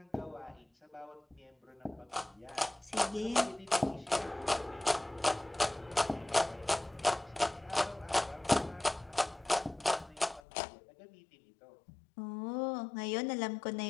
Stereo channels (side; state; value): right; drops out; at 10.4 s